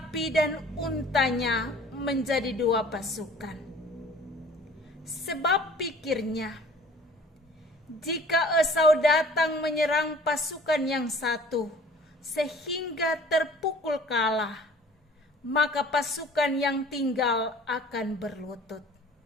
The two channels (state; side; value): normal; both; correlation 0.49